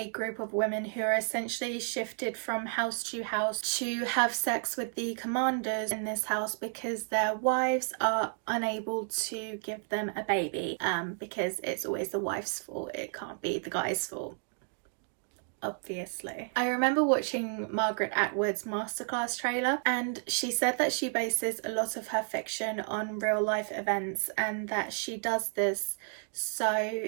group of women who are essentially shifted from house to house to have sex with the commanders in this house because their wives are unable to give them a baby, because it's always the wife's fault. It can't be the guy's fault. Obviously. I remember watching Margaret Atwood's masterclass trailer, and she said that she bases a lot of her fiction on real life events and that she does this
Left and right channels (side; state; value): left; silent; 57 dB below the other